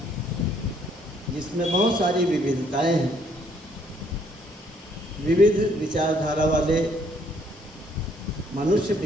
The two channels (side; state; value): both; normal; correlation 0.66